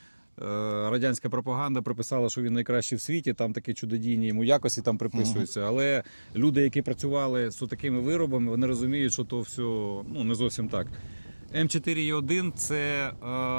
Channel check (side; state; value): both; inverted; correlation -1.00